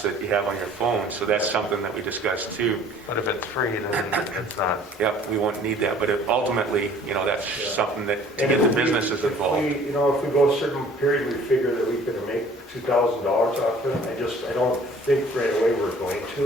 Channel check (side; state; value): both; normal; correlation 0.53